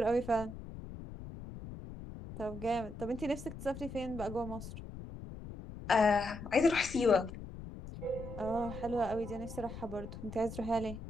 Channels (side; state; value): left; noise; rumble, 11 dB below the sound